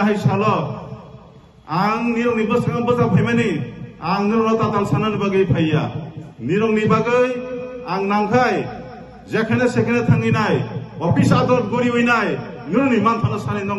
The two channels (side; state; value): both; identical; correlation 1.00